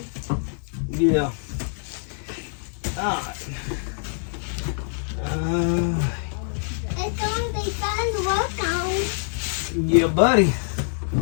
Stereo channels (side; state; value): right; silent; digital silence